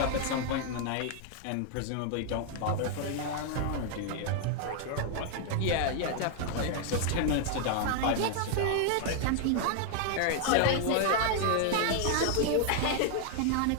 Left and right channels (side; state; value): both; different; correlation 0.00